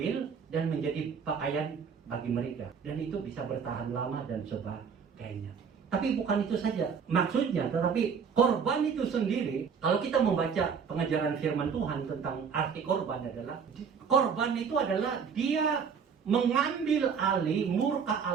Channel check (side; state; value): left; quieter; 6.5 dB